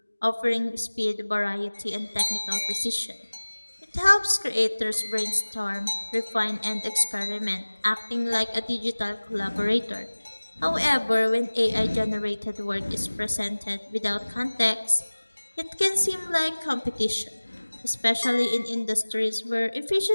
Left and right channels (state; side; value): inverted; both; correlation -1.00